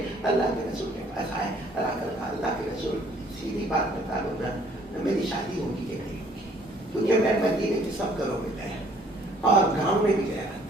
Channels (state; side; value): normal; both; correlation 0.60